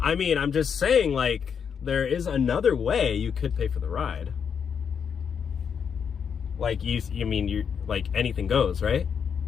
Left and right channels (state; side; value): quieter; right; 7.1 dB